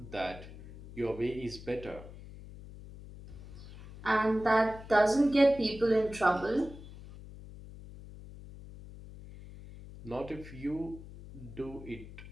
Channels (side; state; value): left; noise; hum, 15 dB below the sound